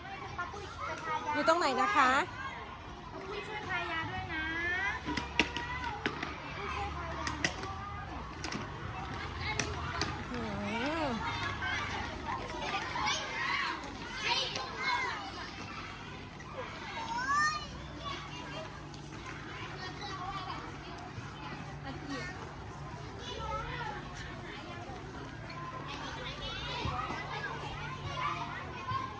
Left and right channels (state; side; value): identical; both; correlation 1.00